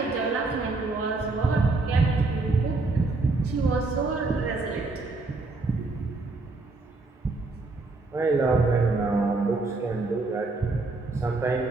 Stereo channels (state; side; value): quieter; left; 3.4 dB